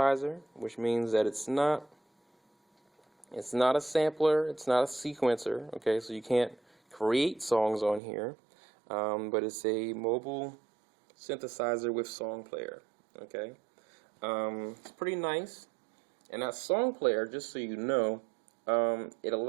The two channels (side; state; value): left; drops out; at 8.0 s